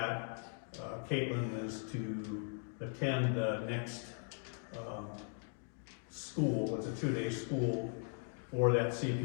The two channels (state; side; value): silent; right; 52 dB below the other